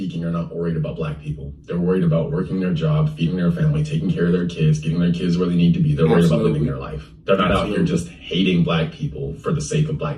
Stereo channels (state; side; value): identical; both; correlation 1.00